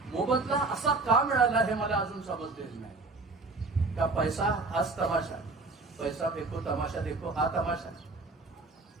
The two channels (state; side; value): quieter; left; 3.6 dB